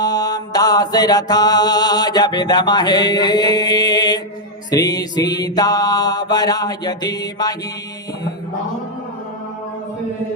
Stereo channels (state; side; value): normal; both; correlation -0.01